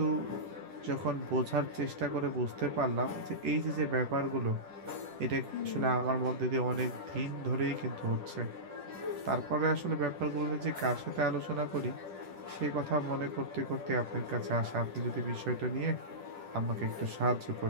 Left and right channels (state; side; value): late; left; 10 ms